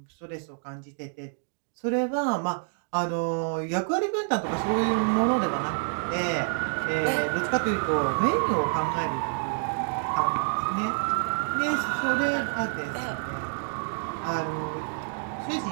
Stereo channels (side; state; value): left; silent; digital silence